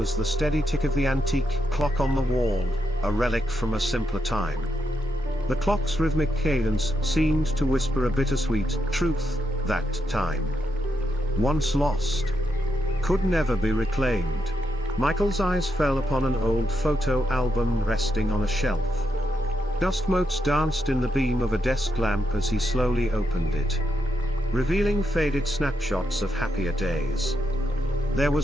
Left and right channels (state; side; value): normal; both; correlation 0.83